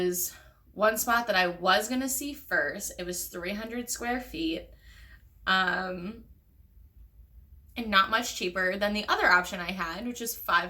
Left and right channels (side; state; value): both; identical; correlation 1.00